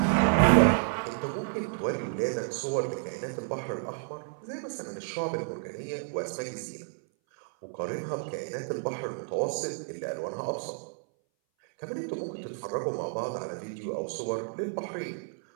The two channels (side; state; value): left; silent; 57 dB below the other